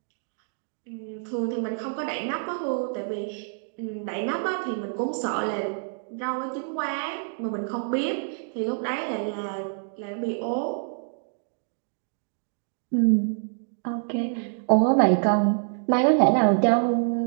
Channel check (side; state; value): left; silent; digital silence